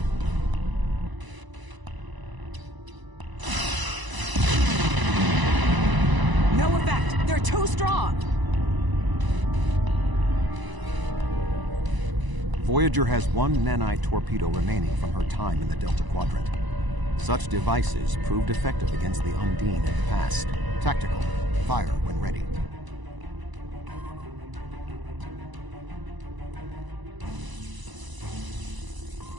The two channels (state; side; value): late; left; 1.0 ms